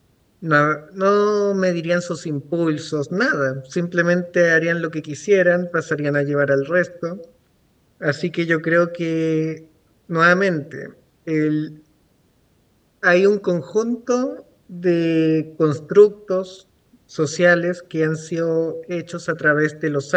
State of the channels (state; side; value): identical; both; correlation 1.00